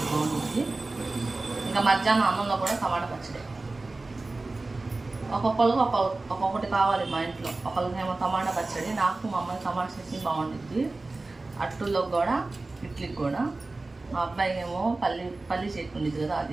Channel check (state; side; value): quieter; left; 3.3 dB